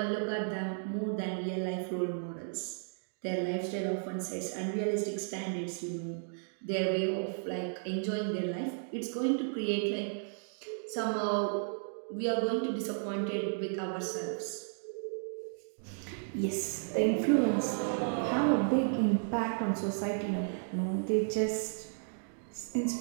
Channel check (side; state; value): left; silent; digital silence